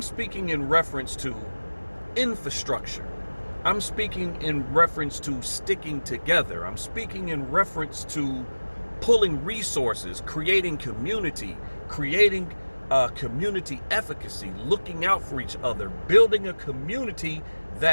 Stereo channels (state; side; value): inverted; both; correlation -1.00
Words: speaking in reference to infrastructure. I'm speaking in reference to sticking together. I'm speaking in reference to pulling resources, creating community, creating community efficacy, looking out for each other, building a community